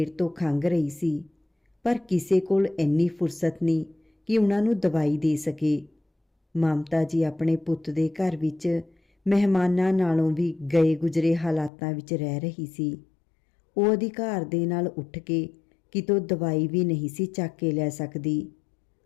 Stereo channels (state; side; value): drops out; right; at 11.7 s